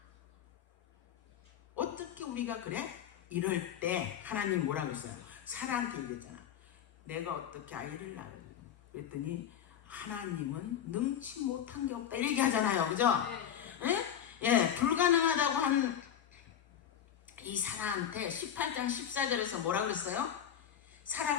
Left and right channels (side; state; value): right; quieter; 9.5 dB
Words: 어떻게 우리가 그래? 이럴 때 하나님 뭐라고 했어요? 사라한테 얘기했잖아. 내가 어떻게 아이를 낳으려? 그랬더니 하나님은 능치 못한 게 없다 이렇게 하잖아요. 그죠? 불가능하다고 한 이 사라한테 18장 14절에서 뭐라 그랬어요?